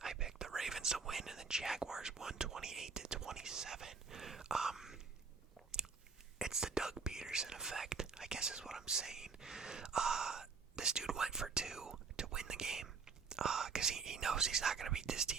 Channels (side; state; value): left; quieter; 5.1 dB